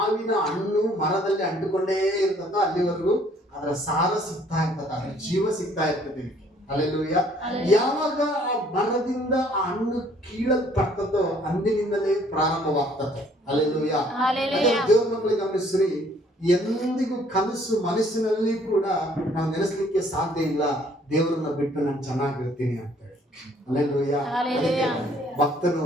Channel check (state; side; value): normal; both; correlation 0.60